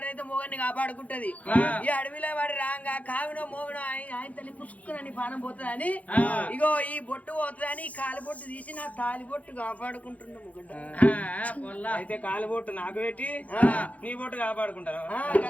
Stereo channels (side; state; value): right; late; 0.069 ms